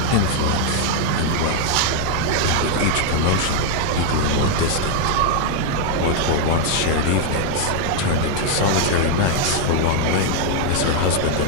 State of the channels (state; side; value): different; both; correlation 0.00